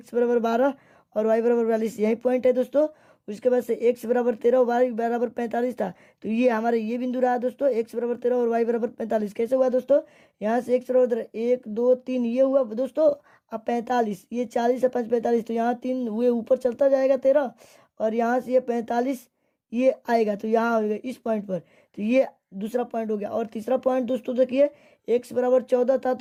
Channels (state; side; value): identical; both; correlation 1.00